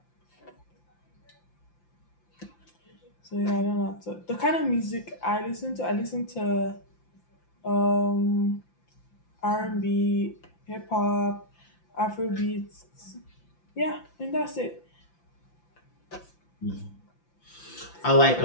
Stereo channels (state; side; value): late; right; 5.8 ms